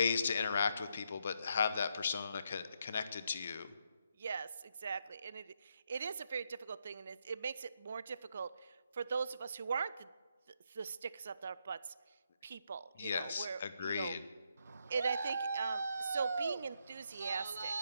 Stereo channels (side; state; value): both; inverted; correlation -0.79